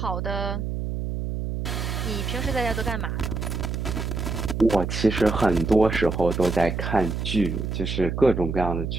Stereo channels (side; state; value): right; noise; hum, 3 dB below the sound